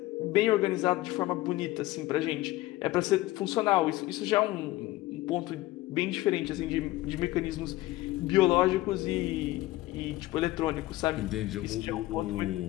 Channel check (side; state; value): right; quieter; 17.7 dB